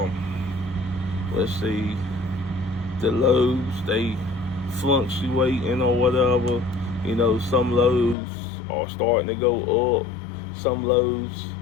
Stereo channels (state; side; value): drops out; right; at 8.2 s